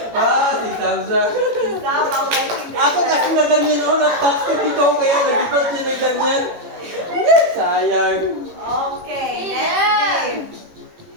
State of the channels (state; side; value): late; left; 18 ms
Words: Ah, si Samsa. Stop ang lighting. Ako kasi na ganyan ako. Nag-pass ko dito kaya nag-ibat siya na ganyan. Sayang. Okay.